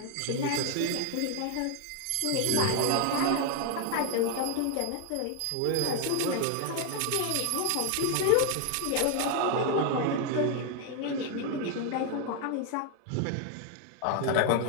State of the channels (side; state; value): both; different; correlation 0.01